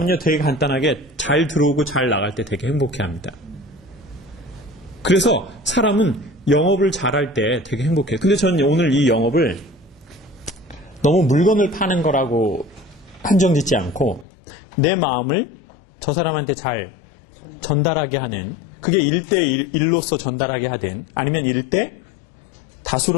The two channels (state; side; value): drops out; right; at 14.2 s